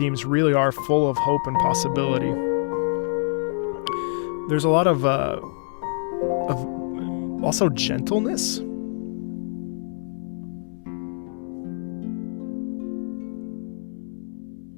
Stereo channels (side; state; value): right; silent; 61 dB below the other